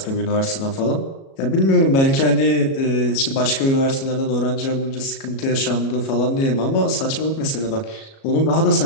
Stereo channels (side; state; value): right; late; 37 ms